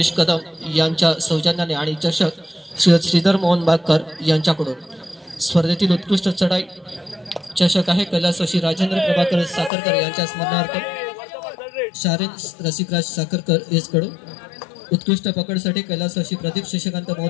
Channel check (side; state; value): right; drops out; at 9.7 s